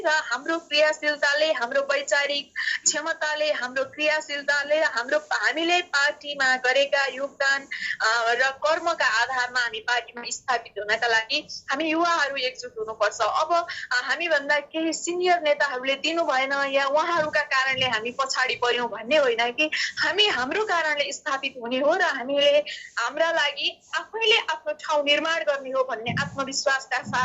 र हाम्रो क्रियाशीलताले हाम्रो वैचारिक क्षमताले हाम्रो क्रियाशीलताले हामीले पार्टीमा गरेका योगदान र कर्मका आधारमा हामी पार्टीमा स्थापित हुनका लागि हामी युवाहरू एकजुट हुनुपर्छ। अब हामी भन्दा केही सिनियर नेताहरूले दिनु भएन या उहाँहरूका कारणले हामी पछाडि पर्यौं भन्ने होइन कि हामी हाम्रो कारणले स्थापित हुने हो र हामीले हाम्रा लागि आफैले आफ्नो ठाउँ निर्माण गर्ने हो भन्ने आत्मविश्वासका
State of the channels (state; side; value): identical; both; correlation 1.00